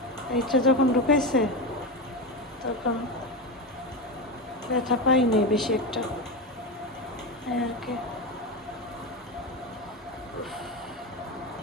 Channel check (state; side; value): normal; both; correlation 0.17